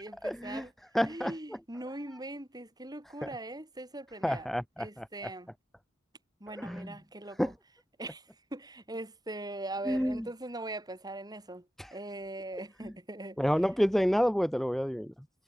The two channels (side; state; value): both; normal; correlation 0.93